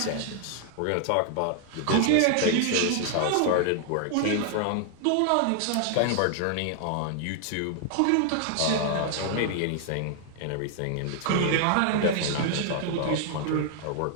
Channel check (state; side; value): different; both; correlation 0.00